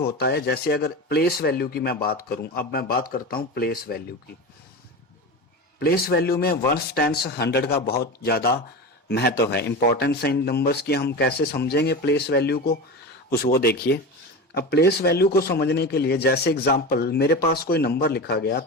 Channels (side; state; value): both; normal; correlation 0.26